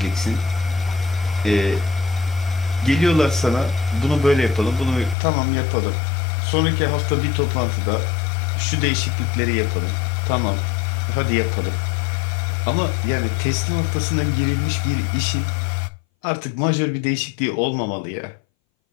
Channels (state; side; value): drops out; right; at 5.2 s